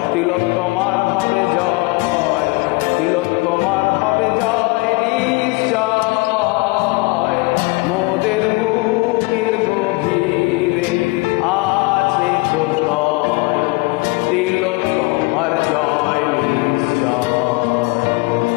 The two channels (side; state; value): right; quieter; 24.9 dB